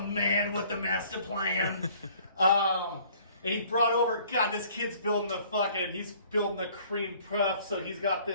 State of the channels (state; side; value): inverted; both; correlation -0.56